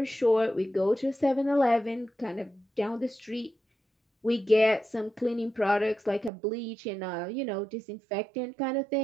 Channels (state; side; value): drops out; left; at 6.3 s